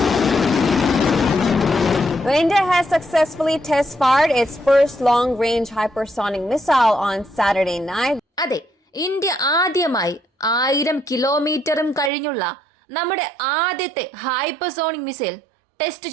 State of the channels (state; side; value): drops out; left; at 12.1 s